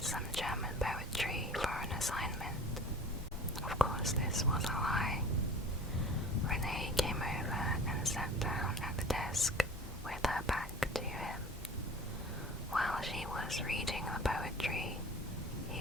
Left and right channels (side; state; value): both; normal; correlation 0.42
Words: some German poetry for an assignment. Of course, this was a lie. Renee came over and sat down at the desk with her back to him. While she was reading the poetry,